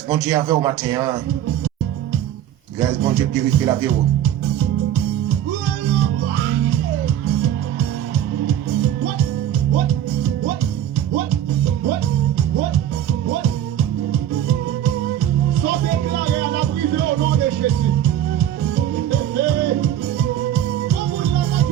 bon Dieu avec au matin. Grâce bon Dieu purifie la vie.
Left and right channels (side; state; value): left; quieter; 11.1 dB